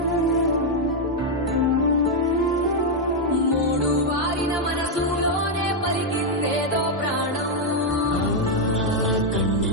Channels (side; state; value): both; normal; correlation 0.00